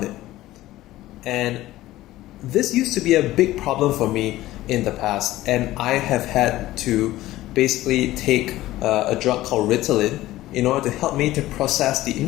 it. And this used to be a big problem for me in the past, and I have had to basically take a drug called Ritalin in order to help me to process the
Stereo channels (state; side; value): quieter; right; 16.1 dB